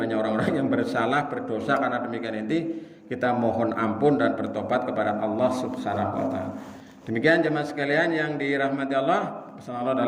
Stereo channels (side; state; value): both; identical; correlation 1.00